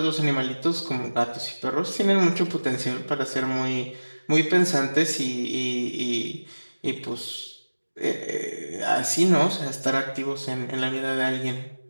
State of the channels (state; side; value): inverted; both; correlation -1.00